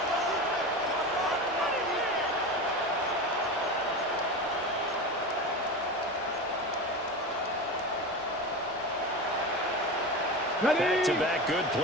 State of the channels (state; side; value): normal; both; correlation 0.25